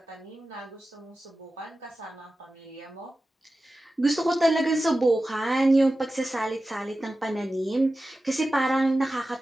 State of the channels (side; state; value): both; normal; correlation 0.94